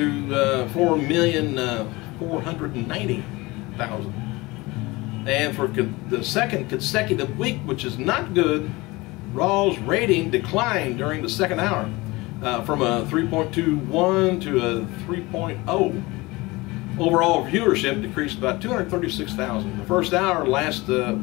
4,490,000. And for the second consecutive week, which is not good, Raw's rating declined during the second hour from a 3.21 to a 3.0. Overall viewership decreased about 236,000. The first hour last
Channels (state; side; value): quieter; right; 22.3 dB